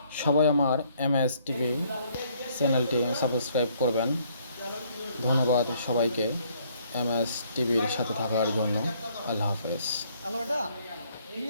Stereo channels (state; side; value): inverted; both; correlation -0.65